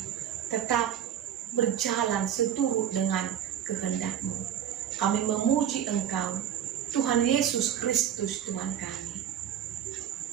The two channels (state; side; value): quieter; left; 9.8 dB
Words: tetap berjalan seturut dengan kehendak-Mu. Kami memuji Engkau, Tuhan Yesus Kristus Tuhan kami.